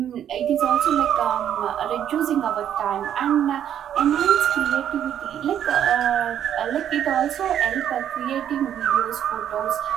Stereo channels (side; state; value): left; quieter; 10.0 dB